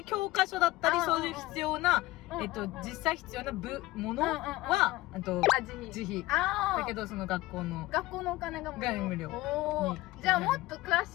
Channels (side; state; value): right; quieter; 18.6 dB